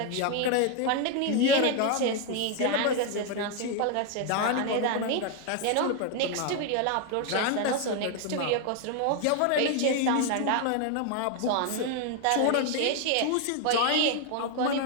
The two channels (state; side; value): different; both; correlation 0.01